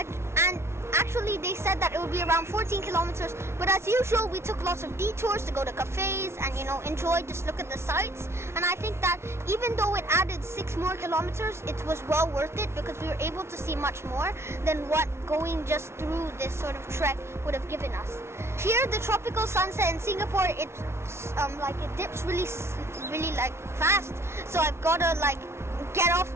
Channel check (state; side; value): late; left; 0.13 ms